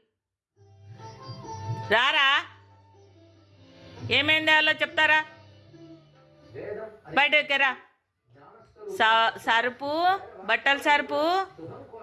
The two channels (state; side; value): identical; both; correlation 1.00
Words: రారా ఏమైంది తేవాలో చెప్తారా? బయటకి రా. సరుపు, బట్టల సరుపు,